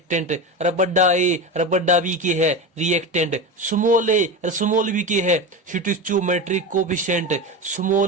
अरे बड़ा ए अरे बड़ा बी के है रिएक्टेंट, स्मॉल ए और स्मॉल बी के है स्टोइचोमेट्रिक कोफिशिएंट,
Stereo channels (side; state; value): both; normal; correlation 0.22